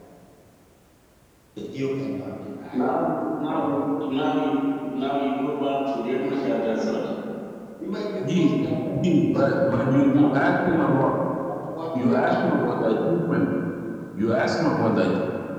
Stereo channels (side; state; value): both; identical; correlation 1.00